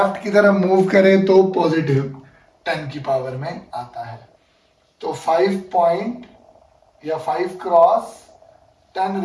की तरफ मूव करें तो पॉजिटिव 10 की पावर में आता है। तो 5 पॉइंट या 5 क्रॉस 10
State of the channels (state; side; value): identical; both; correlation 1.00